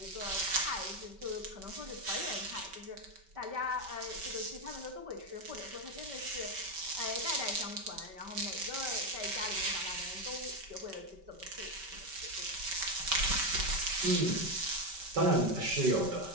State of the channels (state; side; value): late; left; 5.2 ms